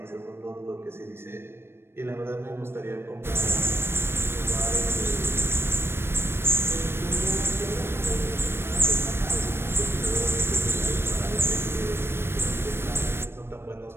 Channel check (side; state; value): left; late; 0.12 ms